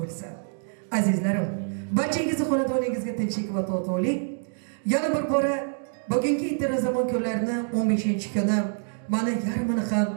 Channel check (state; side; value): silent; left; digital silence